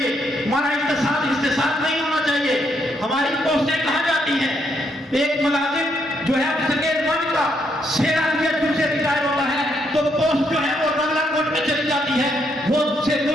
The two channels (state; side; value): normal; both; correlation 0.75